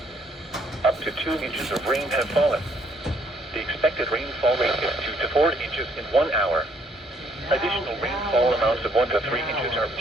Up to 2 inches of rain have fallen. The expected rainfall rate is 2 to 4 inches in 1 hour. Additional rainfall amounts of 1 to 3 inches are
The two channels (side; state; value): both; normal; correlation 0.66